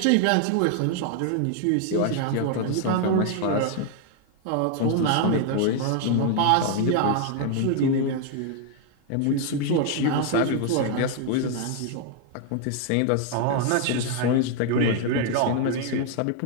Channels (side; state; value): both; different; correlation 0.00